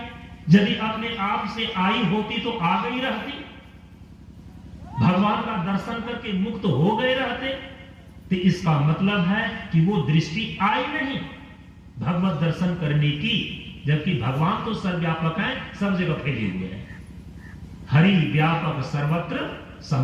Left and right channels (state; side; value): identical; both; correlation 1.00